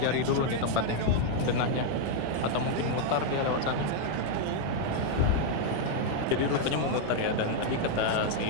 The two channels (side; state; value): both; different; correlation 0.00